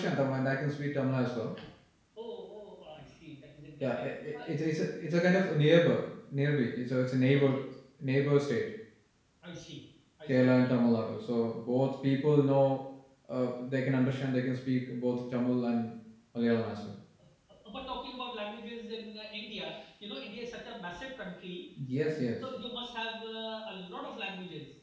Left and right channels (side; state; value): both; identical; correlation 1.00